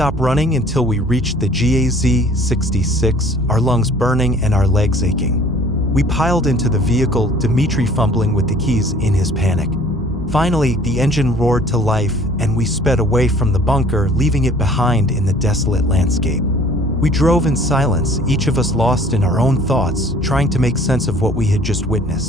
running until we reached the GAZ-66, our lungs burning and our legs aching. We piled into the vehicle, Dmitri fumbling with the keys in his panic. Finally, the engine roared to life, and we sped away from the bunker, leaving it behind in the desolate landscape. We drove in silence, each of us lost in our own thoughts, trying to make sense of what we had just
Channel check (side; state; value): both; normal; correlation 0.52